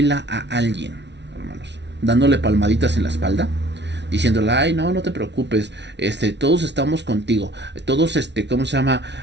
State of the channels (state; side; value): late; left; 0.51 ms